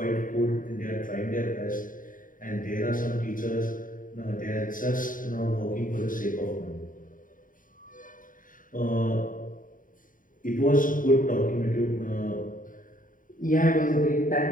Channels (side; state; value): right; late; 0.39 ms